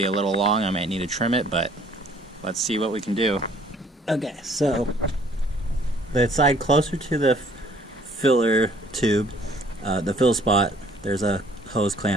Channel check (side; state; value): both; normal; correlation 0.58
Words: a little long, I might need to trim it, but let's see what we can do. Okay, so the side closer to the filler tube, the fill spot, there's a hose